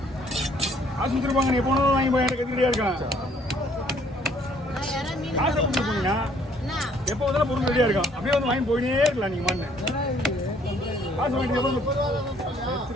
காசு கொடுத்துருப்பாங்க நீ போனதும் வாங்கி போய் எனக்கு கத்தி ரெடியாக இருக்கான் காசை கொடுத்து போனீங்கன்னா எப்போ வந்தாலும் பொருள் ரெடியாக இருக்கும் அப்படியே வந்து வாங்கி போயினே இருக்கலாம் நீங்கள் மண்ணு காசு வாங்கி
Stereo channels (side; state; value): both; normal; correlation 0.62